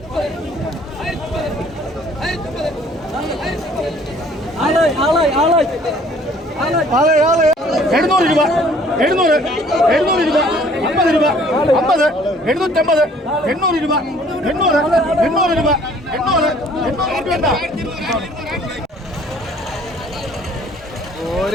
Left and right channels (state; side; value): normal; both; correlation 0.56